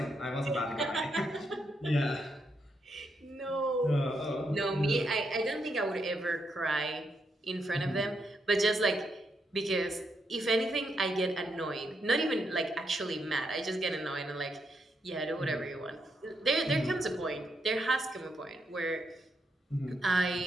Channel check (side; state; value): both; normal; correlation 0.80